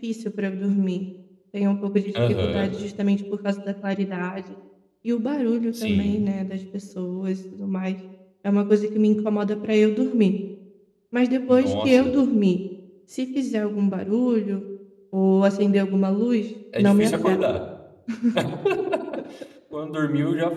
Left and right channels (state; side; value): identical; both; correlation 1.00